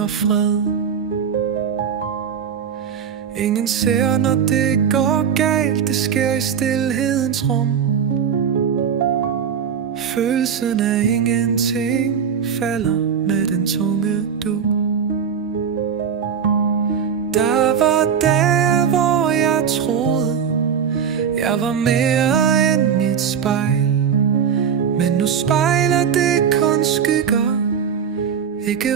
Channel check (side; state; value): left; quieter; 7.5 dB